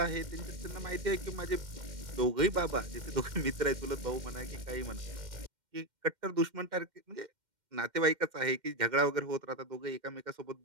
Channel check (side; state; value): left; late; 2.1 ms